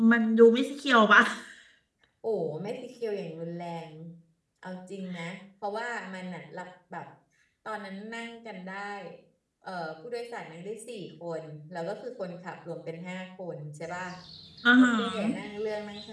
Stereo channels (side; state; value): both; identical; correlation 1.00